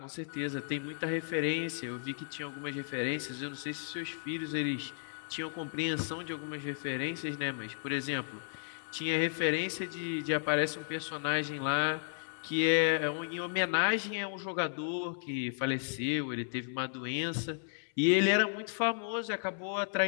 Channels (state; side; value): silent; right; 55 dB below the other